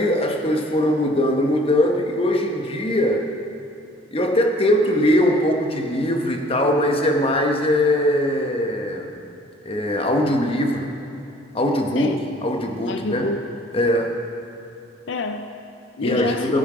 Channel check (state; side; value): normal; both; correlation 0.54